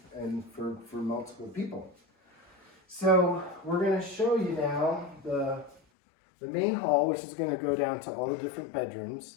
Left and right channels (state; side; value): drops out; right; at 5.8 s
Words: and for multiple people. So we're going to show you now the main hall, which is going to go down to all the different